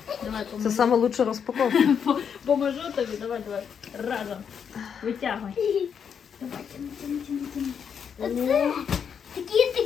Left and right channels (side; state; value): right; quieter; 7.3 dB